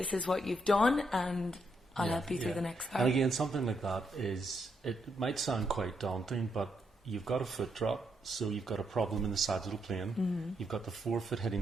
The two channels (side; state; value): both; normal; correlation 0.78